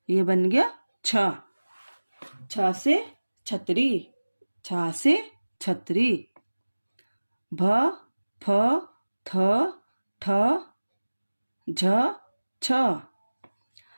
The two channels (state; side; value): inverted; both; correlation -1.00